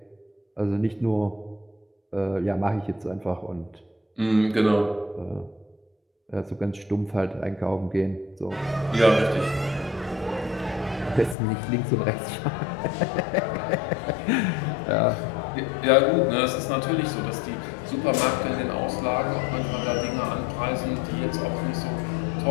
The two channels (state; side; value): drops out; right; at 11.4 s